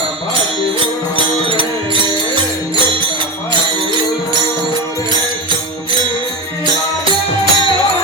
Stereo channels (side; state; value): both; normal; correlation 0.20